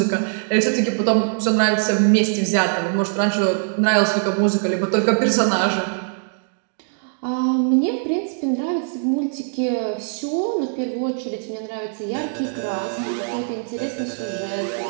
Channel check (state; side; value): silent; left; digital silence